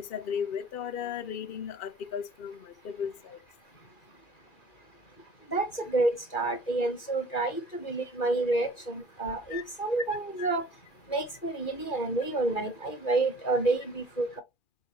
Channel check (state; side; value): late; right; 2.4 ms